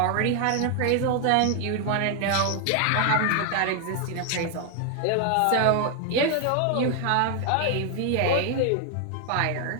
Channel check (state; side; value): different; both; correlation 0.00